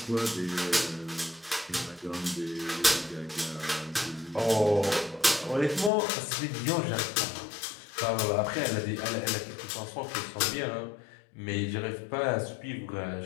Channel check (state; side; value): drops out; right; at 5.9 s